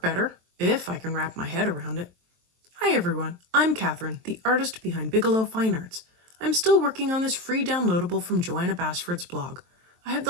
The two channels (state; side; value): late; left; 23 ms